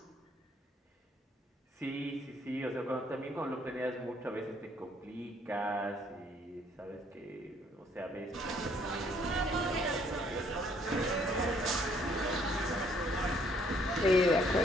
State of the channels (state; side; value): normal; both; correlation 0.65